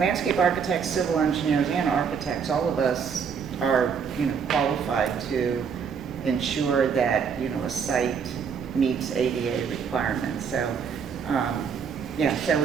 architects, civil engineers, and architects, all of us are, you know, qualified to ensure that, you know, a site meets ADA requirements. So, so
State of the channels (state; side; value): quieter; left; 6.5 dB